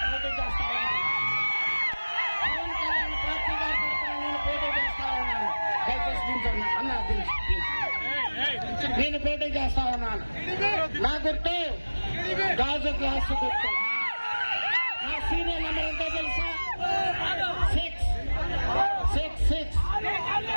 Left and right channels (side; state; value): both; inverted; correlation -1.00